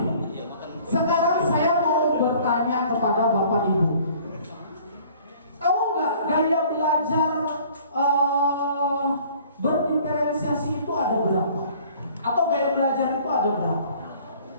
Sekarang saya mau bertanya kepada Bapak Ibu. Tahu nggak gaya belajar berdiferensiasi itu ada berapa? Atau gaya belajar itu ada berapa?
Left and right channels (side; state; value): both; inverted; correlation -0.53